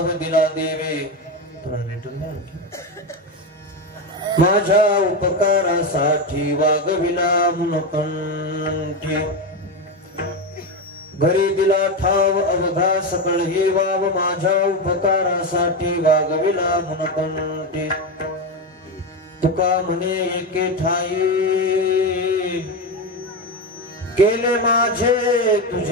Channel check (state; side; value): normal; both; correlation 0.14